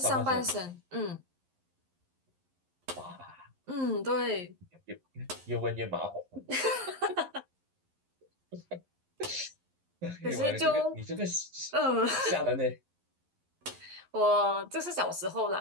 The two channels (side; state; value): left; late; 11 ms